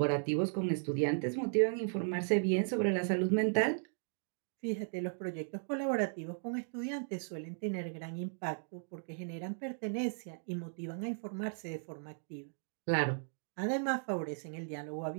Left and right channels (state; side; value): silent; left; digital silence